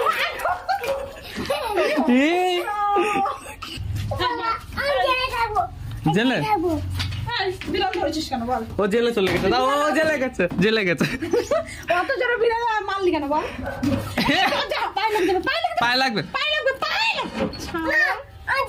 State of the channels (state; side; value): identical; both; correlation 1.00